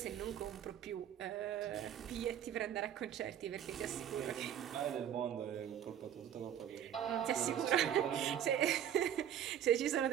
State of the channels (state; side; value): quieter; left; 10.0 dB